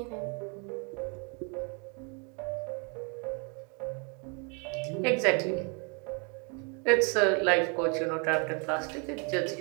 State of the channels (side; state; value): left; quieter; 35.7 dB